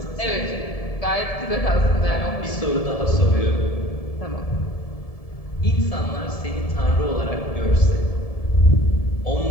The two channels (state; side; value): late; right; 1.7 ms